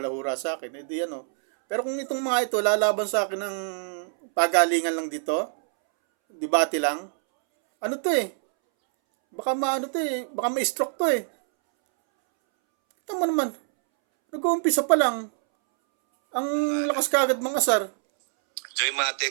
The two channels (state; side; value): silent; left; 62 dB below the other